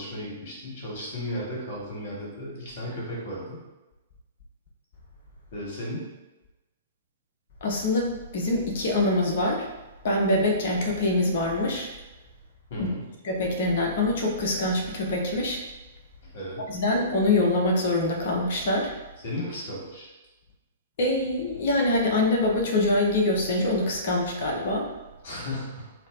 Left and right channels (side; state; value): both; inverted; correlation -0.38